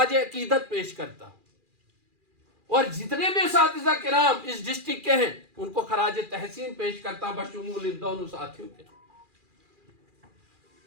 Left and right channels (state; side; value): late; left; 2.4 ms